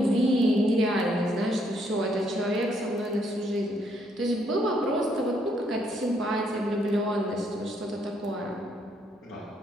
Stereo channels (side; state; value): both; normal; correlation 0.71